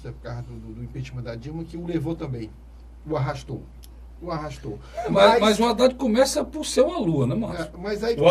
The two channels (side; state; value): both; identical; correlation 1.00